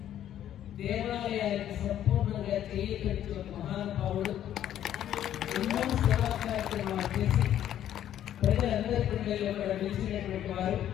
దేవాలయానికి సంపూర్ణంగా చేయించిన మహానుభావుడు, ఎన్నో సేవా కార్యక్రమాలు చేసి ప్రజలందరి గుండెల్లో కూడా నిలిచినటువంటి వారు.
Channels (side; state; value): right; quieter; 11.2 dB